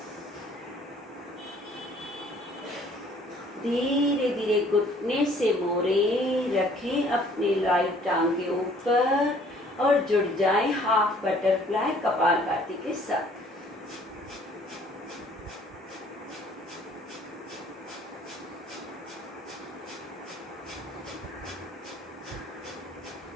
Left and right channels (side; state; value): both; normal; correlation 0.57